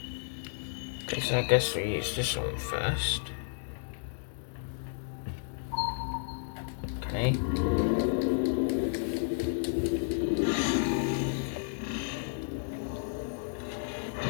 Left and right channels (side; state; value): right; silent; digital silence